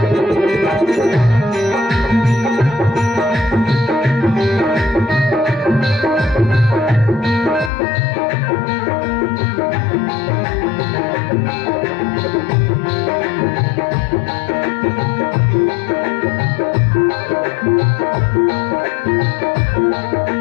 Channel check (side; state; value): right; drops out; at 7.7 s